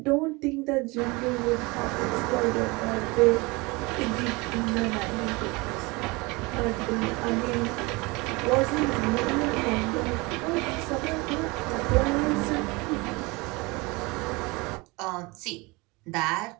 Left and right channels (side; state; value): left; quieter; 25.3 dB